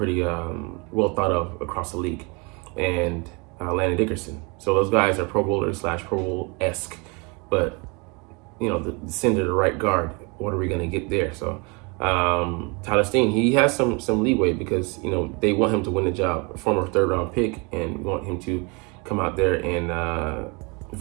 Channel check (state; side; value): quieter; left; 30.0 dB